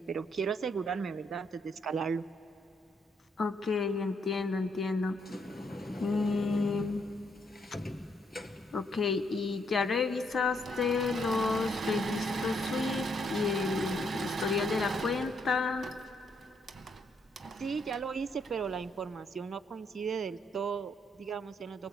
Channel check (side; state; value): both; normal; correlation 0.74